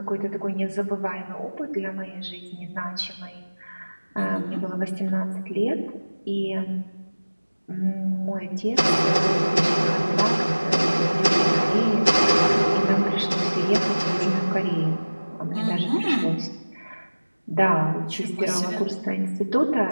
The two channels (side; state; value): both; inverted; correlation -1.00